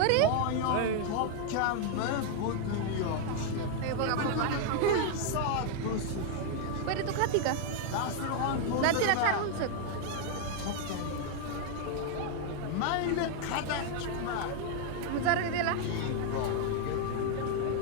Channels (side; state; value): both; different; correlation 0.00